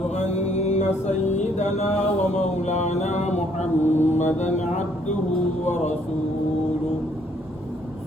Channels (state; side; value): normal; both; correlation 0.66